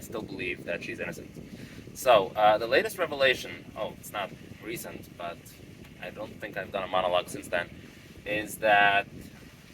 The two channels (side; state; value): both; identical; correlation 1.00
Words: still believe that she's innocent. So, the latest revelation, it's not recent, but I don't think I've done a monologue since then, is that